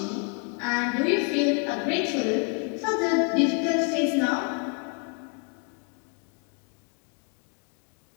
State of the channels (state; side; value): quieter; right; 37.1 dB